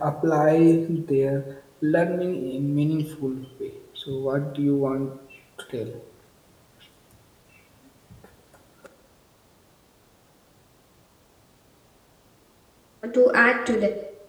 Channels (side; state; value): both; identical; correlation 1.00